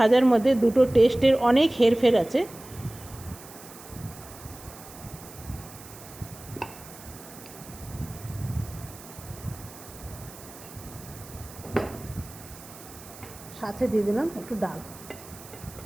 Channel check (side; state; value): right; noise; hiss, 18 dB below the sound